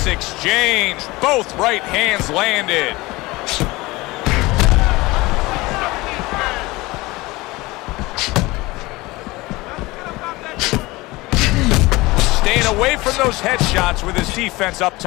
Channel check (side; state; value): right; quieter; 21.3 dB